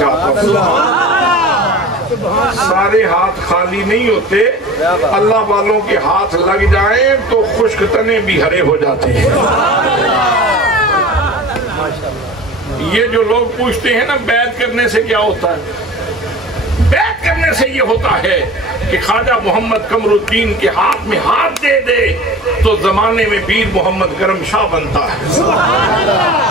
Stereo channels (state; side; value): normal; both; correlation 0.38